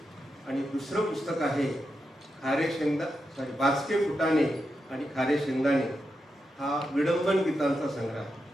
आणि दुसरं पुस्तक आहे बाचके फुटाणे आणि खारे शेंगदाणे. हा विडंबन गीतांचा संग्रह आहे.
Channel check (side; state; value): both; normal; correlation 0.87